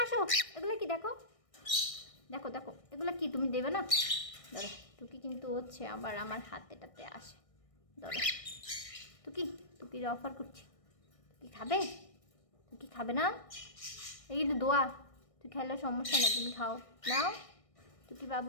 আসো, এগুলো কি দেখো, দেখো দেখো এগুলো কি, তুমি দেবে না? ধরো, টুকি কিন্তু হচ্ছে আবার আমার হাতেটাতে আসে। ধরো টুকি, টুকির অফার করছি। তুই খাবে? তুই খাবে না? এই কিন্তু দোয়া, তুই খাইলে সমস্যা নেই, তুমি খাও। নাও টুকি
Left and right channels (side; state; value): right; late; 1.6 ms